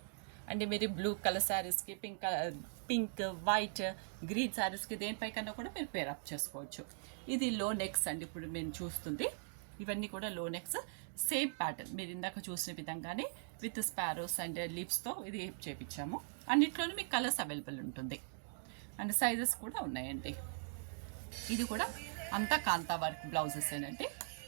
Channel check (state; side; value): silent; left; digital silence